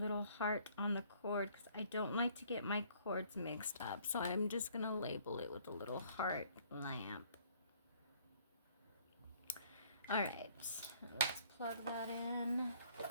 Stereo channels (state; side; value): inverted; both; correlation -0.60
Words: heart on the cord because I don't like to get my cords mixed up, so I'm just gonna label it with a little heart lamp. All right, let's plug that in.